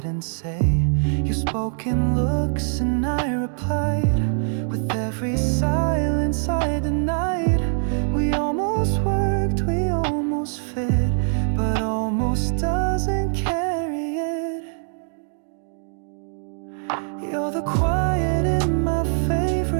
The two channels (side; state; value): left; silent; 58 dB below the other